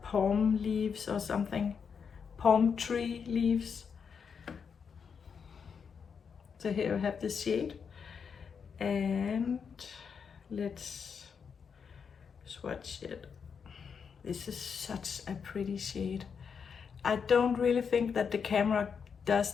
palm leaves or something. Palm tree leaves. So here you have the shade. And let's swatch it. This is such a pretty shade. I don't really think that the camera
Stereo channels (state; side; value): quieter; right; 6.4 dB